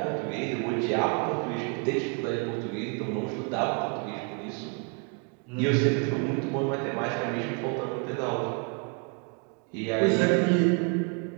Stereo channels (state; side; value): quieter; left; 36.2 dB